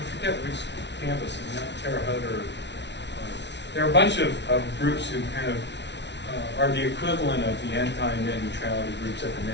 forget which campus, is not Terre Haute or there are a bunch of groups who kind of are the equivalent of the anti-net neutrality groups at the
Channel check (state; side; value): late; right; 0.51 ms